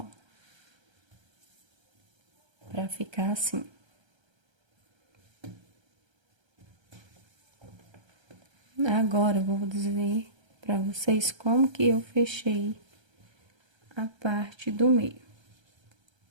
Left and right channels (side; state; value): left; late; 1.3 ms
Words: Para ficar assim. Agora, eu vou dizer para vocês como que eu fechei a parte do meio.